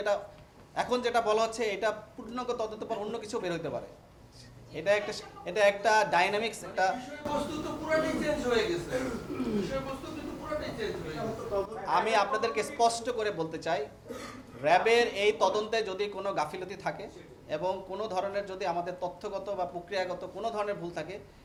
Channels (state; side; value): identical; both; correlation 1.00